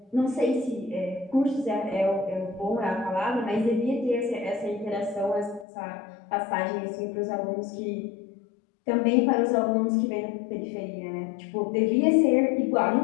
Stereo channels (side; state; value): right; drops out; at 5.7 s